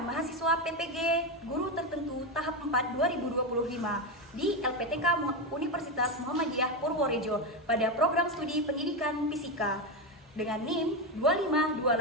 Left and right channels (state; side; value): normal; both; correlation 0.12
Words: PPG Guru Tertentu tahap 4 2025 di LPTK Universitas Muhammadiyah Purworejo pada program studi pendidikan fisika dengan NIM